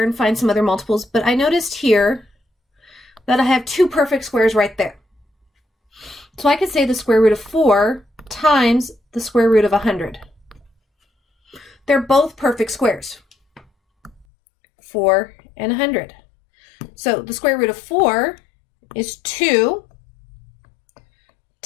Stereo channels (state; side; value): drops out; right; at 14.2 s